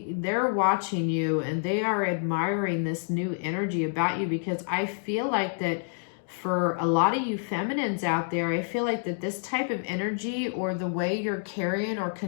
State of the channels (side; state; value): right; silent; digital silence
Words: they're watching you, and they are admiring this new energy about you, because I feel like that for a lot of you feminines out there, I feel like that this type of energy, or the way you're carrying or